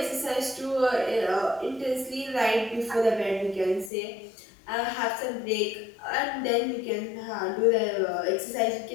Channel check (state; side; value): drops out; right; at 3.9 s